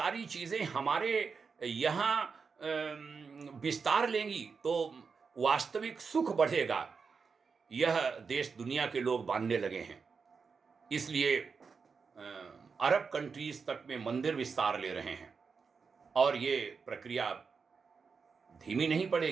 चीज़ें हमारे यहाँ विस्तार लेंगी तो वास्तविक सुख बढ़ेगा। यह देश दुनिया के लोग मानने लगे हैं। इसलिए अरब कंट्रीज तक में मंदिर विस्तार ले रहे हैं और ये प्रक्रिया धीमी नहीं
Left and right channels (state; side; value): quieter; left; 5.3 dB